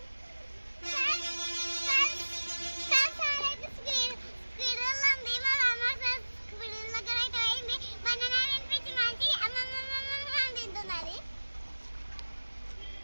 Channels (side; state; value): both; inverted; correlation -1.00